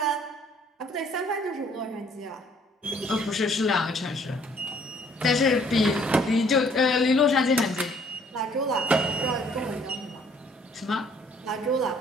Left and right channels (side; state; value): both; normal; correlation 0.61